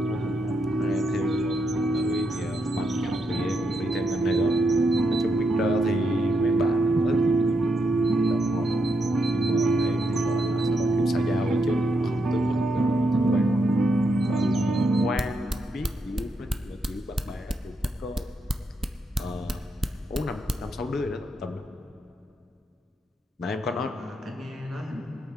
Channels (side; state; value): both; normal; correlation 0.81